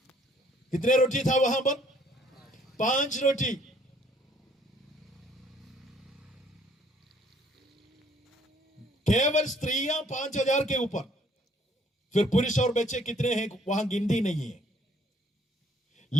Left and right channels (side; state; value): both; normal; correlation 0.62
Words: कितने रोटी था वहां पर? 5 रोटी। केवल स्त्रियां 5000 के ऊपर, फिर पुरुष और बच्चे कितने हैं वहां गिनती नहीं है।